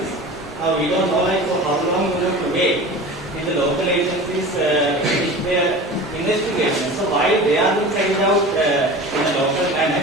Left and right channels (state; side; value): normal; both; correlation 0.35